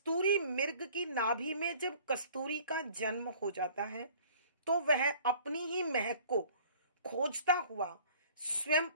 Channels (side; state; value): both; inverted; correlation -0.51